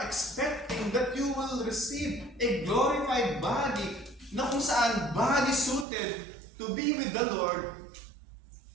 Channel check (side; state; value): left; drops out; at 5.9 s